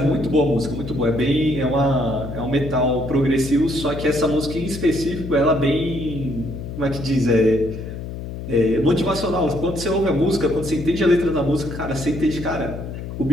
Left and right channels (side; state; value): left; noise; hum, 8 dB below the sound